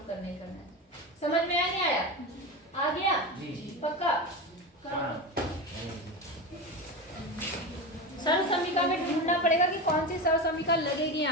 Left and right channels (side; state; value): both; normal; correlation 0.22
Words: करना ही करना है। समझ में आया नहीं आया? आ गया जी। पक्का? सरल समीका में ढूंढना पड़ेगा कि कौन सी सरल समीका लगेगी